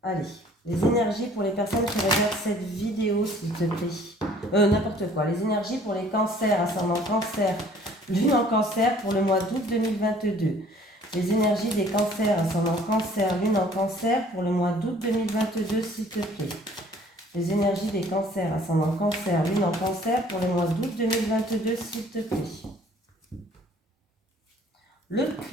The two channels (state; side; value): normal; both; correlation 0.55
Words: Allez, les énergies pour les personnes qui regardent cette vidéo, s'il te plaît. N'importe quoi. Les énergies pour les cancers, ascendant cancer, lune en cancer pour le mois d'août 2022. Les énergies des cancers, ascendant cancer, lune en cancer pour le mois d'août 2022, s'il te plaît. Les énergies des cancers, ascendant cancer, lune en cancer pour le mois d'août 2022, s'il te plaît. Le